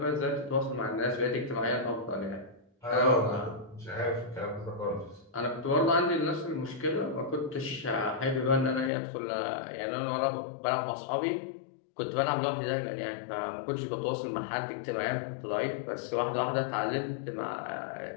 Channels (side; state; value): right; drops out; at 8.9 s